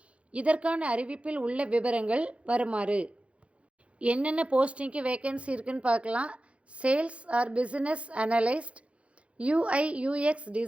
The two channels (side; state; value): left; late; 0.062 ms